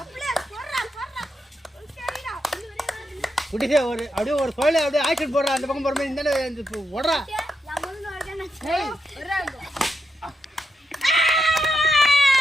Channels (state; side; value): normal; both; correlation 0.83